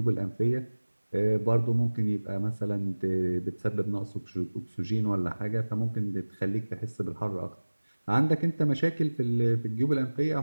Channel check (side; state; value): both; inverted; correlation -1.00